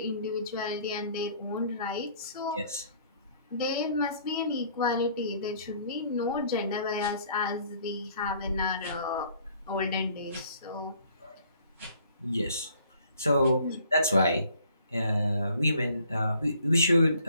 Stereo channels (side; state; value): both; inverted; correlation -0.60